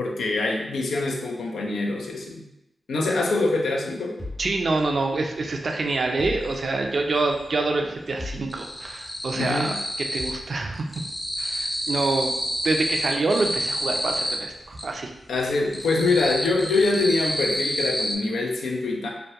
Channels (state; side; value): normal; both; correlation 0.87